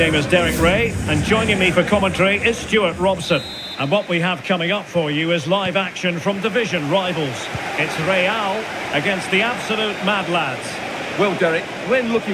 is Derek Ray, and joining me for commentary is Stuart Robson. And what we have coming up for you is live action from division rivals. It's Real against the absolute mad lads. Well, Derek, when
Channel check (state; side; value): identical; both; correlation 1.00